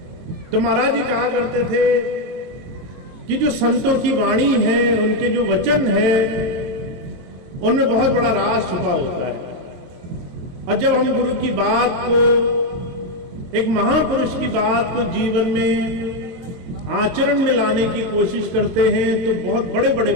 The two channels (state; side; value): late; left; 22 ms